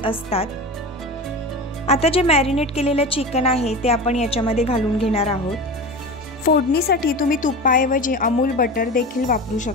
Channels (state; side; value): normal; both; correlation 0.29